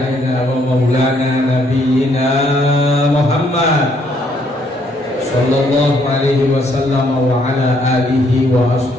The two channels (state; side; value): normal; both; correlation 0.69